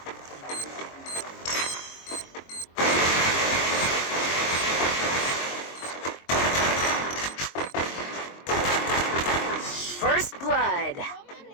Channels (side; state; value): right; late; 22 ms